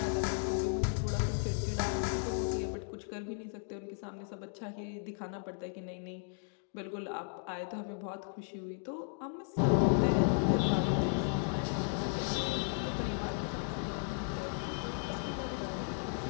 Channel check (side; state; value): right; silent; 54 dB below the other